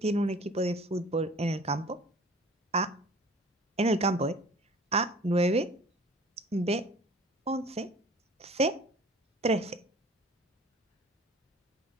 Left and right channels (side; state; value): both; normal; correlation 0.46